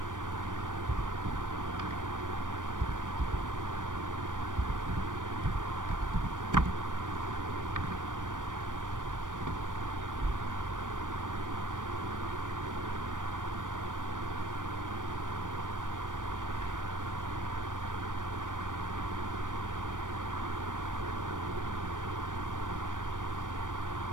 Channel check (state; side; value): late; left; 0.88 ms